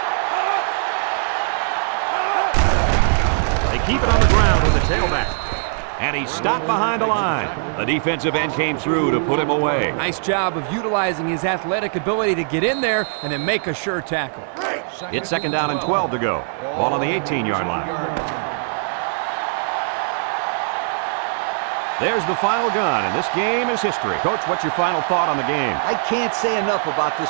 They keep it on the ground with the tailback. And he's stopped behind the line. The defensive end came through to put him away. Nice job of utilizing his athletic ability to get in there and then make a sure tackle. It's 2nd down and 12 to go. Ball on the 18-yard line. There's the final gun, and this game is history. Coach, what's your final thought on the game? I can't say enough about this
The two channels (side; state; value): left; silent; digital silence